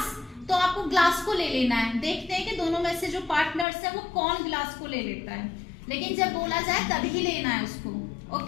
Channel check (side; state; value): right; drops out; at 3.7 s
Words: तो आपको ग्लास को ले लेना है। देखते हैं कि दोनों में से जो पार्टनर्स है वो कौन ग्लास को ले लेता है, लेकिन जब बोला जाए तभी लेना है उसको,